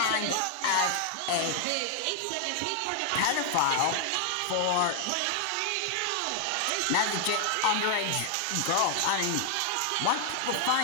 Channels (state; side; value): different; both; correlation 0.00